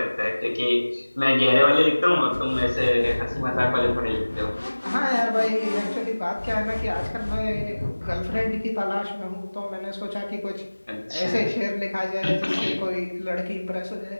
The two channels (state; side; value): inverted; both; correlation -1.00